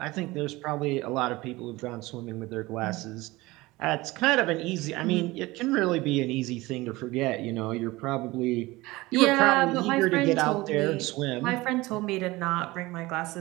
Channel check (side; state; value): left; quieter; 20.5 dB